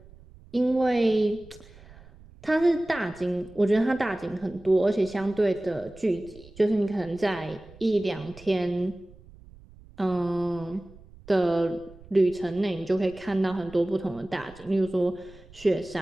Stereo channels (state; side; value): noise; right; rumble, 22 dB below the sound